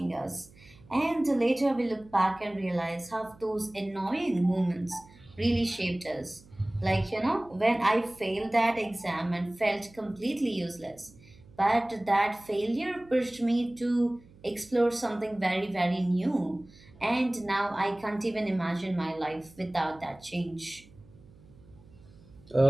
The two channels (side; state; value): right; noise; hum, 24 dB below the sound